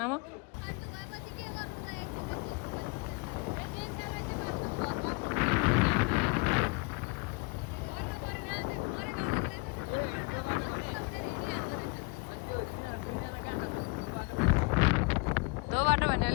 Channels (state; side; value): quieter; right; 28.9 dB